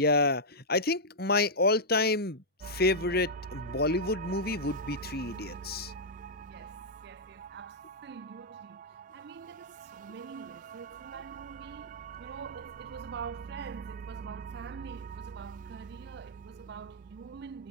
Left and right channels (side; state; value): both; normal; correlation -0.08